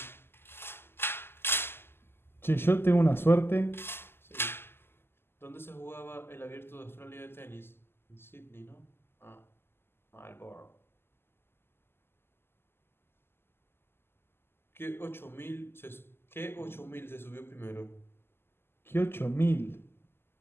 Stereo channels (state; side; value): late; right; 0.11 ms